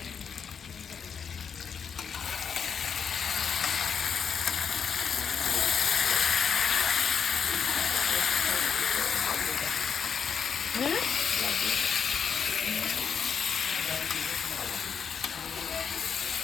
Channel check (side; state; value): right; quieter; 6.8 dB